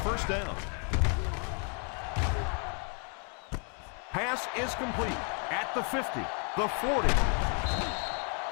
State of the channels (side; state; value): right; quieter; 39.9 dB